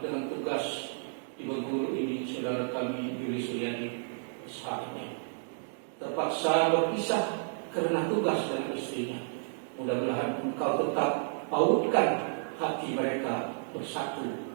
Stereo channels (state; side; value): silent; left; digital silence